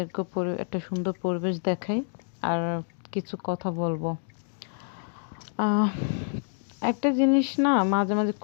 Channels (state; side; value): silent; right; digital silence